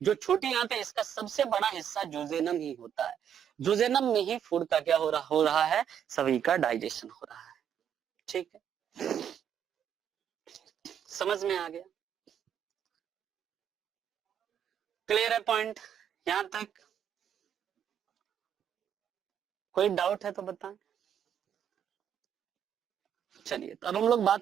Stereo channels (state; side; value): quieter; left; 9.0 dB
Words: जो छोटी आंत है इसका सबसे बड़ा हिस्सा जोजेनम ही होता है। जोजेनम में ही फूड का क्या हो रहा है, सभी का डाइजेशन हो रहा है। ठीक है, समझ में आ गया? क्लियर है पॉइंट यहां तक? कोई डाउट है तो बताएं। चलिए, तो अब हम लोग